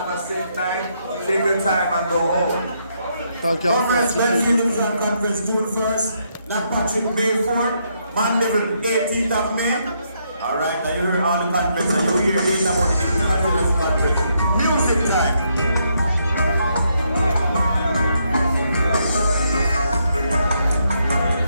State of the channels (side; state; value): both; inverted; correlation -0.76